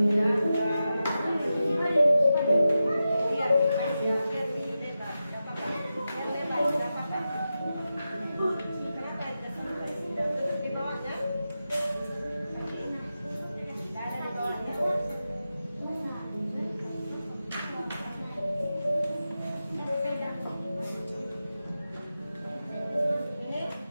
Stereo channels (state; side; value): inverted; both; correlation -0.91